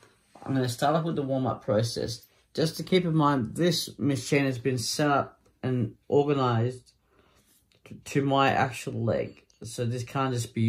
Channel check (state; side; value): identical; both; correlation 1.00